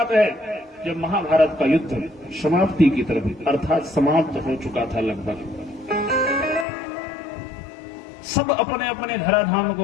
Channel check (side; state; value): right; drops out; at 6.7 s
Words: है जब महाभारत का युद्ध समाप्ति की तरफ अर्थात समाप्त हो चुका था लगभग। सब अपने अपने धराधाम